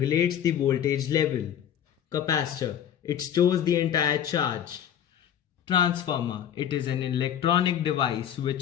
the voltage level. Capacitor. It stores the entire charge. Transformer. It is an electronic device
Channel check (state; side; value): quieter; right; 9.7 dB